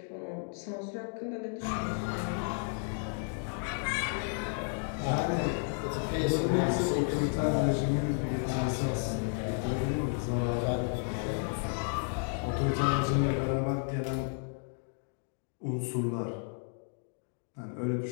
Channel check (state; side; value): silent; right; 55 dB below the other